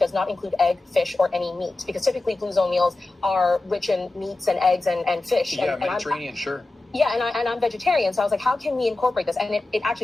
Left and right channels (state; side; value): quieter; right; 3.0 dB